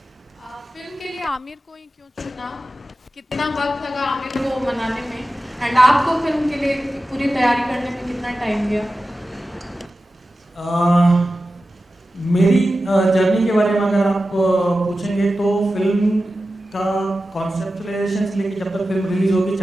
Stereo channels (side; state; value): both; normal; correlation 0.93